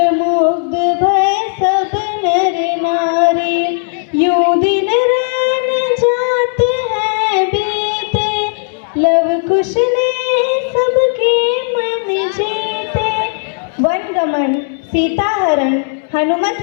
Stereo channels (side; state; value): right; silent; digital silence